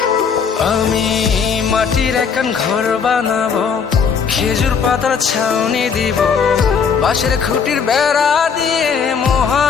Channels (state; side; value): quieter; right; 6.3 dB